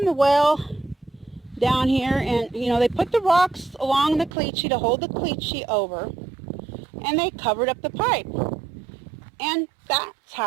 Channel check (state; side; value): drops out; left; at 4.3 s